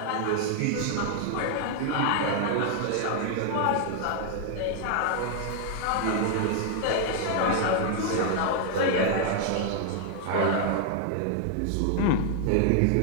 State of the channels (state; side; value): different; both; correlation 0.00